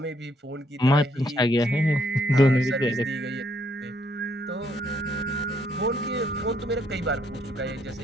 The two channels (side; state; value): both; normal; correlation 0.71